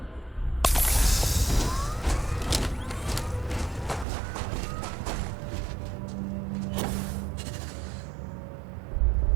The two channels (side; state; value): left; drops out; at 4.0 s